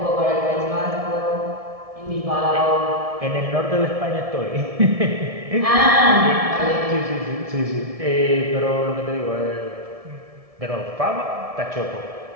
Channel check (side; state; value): left; late; 1.7 ms